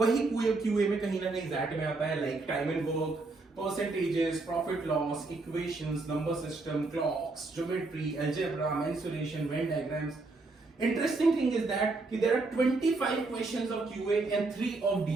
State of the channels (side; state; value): left; quieter; 3.5 dB